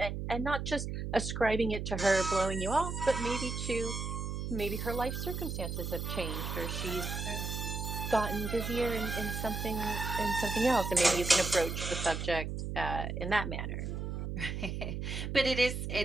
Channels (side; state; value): right; noise; hum, 4 dB below the sound